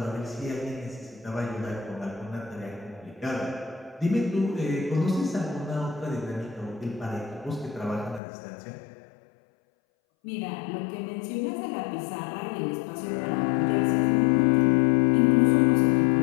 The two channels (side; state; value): right; drops out; at 8.2 s